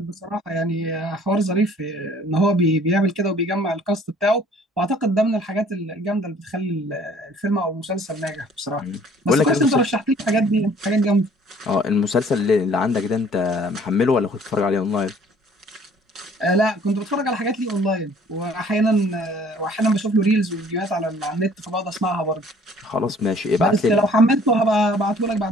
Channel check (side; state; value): both; normal; correlation 0.55